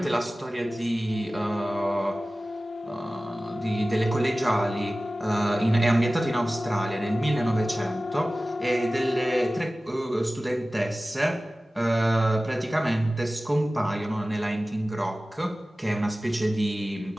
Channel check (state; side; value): normal; both; correlation 0.97